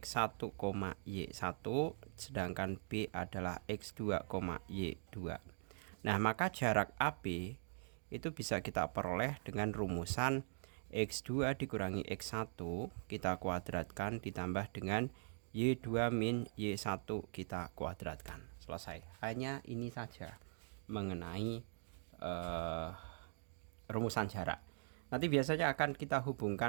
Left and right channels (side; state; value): left; silent; digital silence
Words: y1, sedangkan B adalah x2, y2. Nah, maka jarak AB itu bisa kita peroleh dengan rumusan X2 dikurangi X1 kita kuadratkan ditambah dengan Y2 min Y1 kita kuadratkan. Selesai. Hanya ini saja mengenai rumusan jarak. Nanti biasanya akan kita